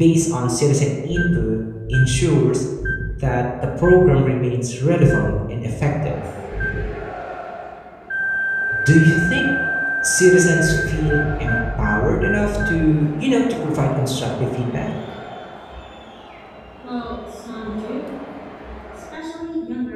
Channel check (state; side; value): identical; both; correlation 1.00